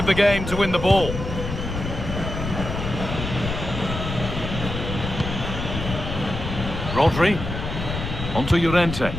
the game to win the ball. Rodri. Onto Llorente.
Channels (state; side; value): noise; left; rumble, 6 dB below the sound